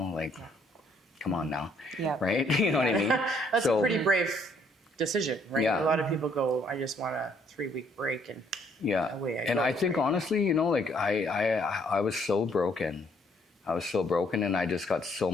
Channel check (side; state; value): both; normal; correlation 0.66